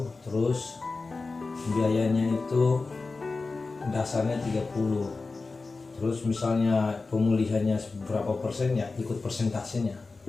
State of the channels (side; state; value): right; quieter; 3.9 dB